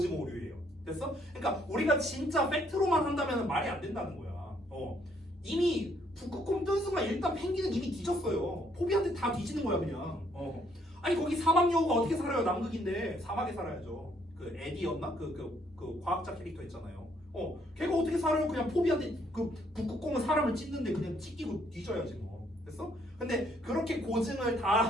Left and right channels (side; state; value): both; normal; correlation 0.68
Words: 됐어? 그러니까 우리가 진짜 팩트로만 한다면 말이 안 된다는 거야. 이미 북극곰 뜬 순간 일단 펭귄은 이미 뒤졌어요. 포비한테 다 뒤지는 거야 그냥. 아니 거기 사막 여우가 어떻게 살아요? 남극인데 사막에 살아야죠. 그 에디였나? 그 과학자 캐릭터 있잖아요. 걔가 어떻게 살아요? 그냥 포비한테 그 북극곰은 사람을 찢는데 그냥 찢기고 뒤져야지 뭐. 됐어? 근데 그렇게 고증을 다